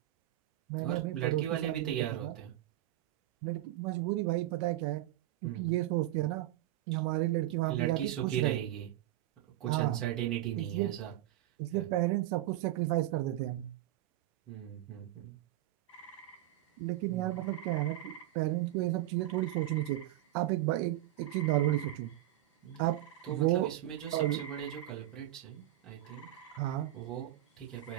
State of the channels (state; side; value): quieter; left; 14.7 dB